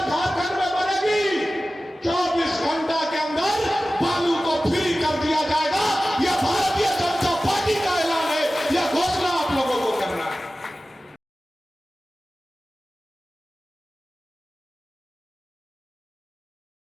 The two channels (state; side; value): normal; both; correlation 0.96